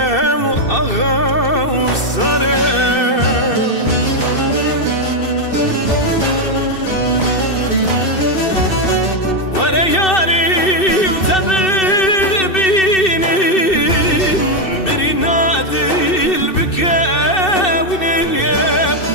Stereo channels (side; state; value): right; late; 2.6 ms